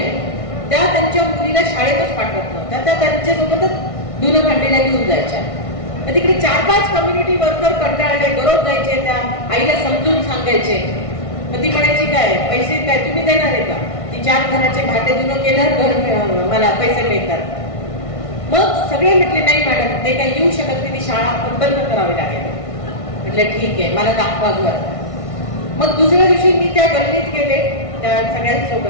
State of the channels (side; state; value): right; late; 1.5 ms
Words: त्या त्यांच्या मुलीला शाळेतच पाठवत नव्हत्या, त्या त्यांच्यासोबतच धुणं भांडीला घेऊन जायच्या. तिकडे 4-5 कम्युनिटी वर्कर कंटाळले, दररोज जायचे, त्या आईला समजून सांगायचे. मग ती म्हणायची काय पैसे काय तुम्ही देणार आहे का? ती 4 घराचे भाते धुणं केलं, घर मला पैसे मिळतात. मग सगळे म्हटले नाही मॅडम ते काही येऊ शकत नाही, ती शाळा बंद करावी लागेल. म्हटलं ठीक आहे, मला दाखवा घर. मग दुसऱ्या दिवशी मी त्या गल्लीत गेले त्या